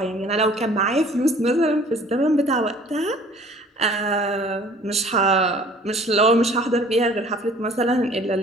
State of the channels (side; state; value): both; normal; correlation 0.52